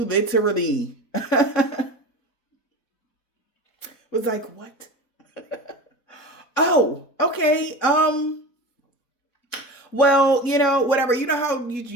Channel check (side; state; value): right; late; 4.1 ms